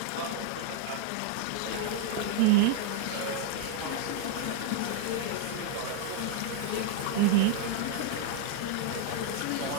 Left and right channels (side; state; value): both; different; correlation 0.00